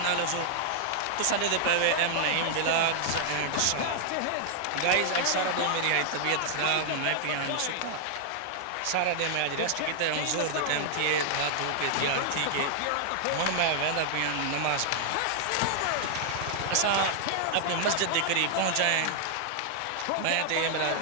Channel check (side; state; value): both; different; correlation -0.01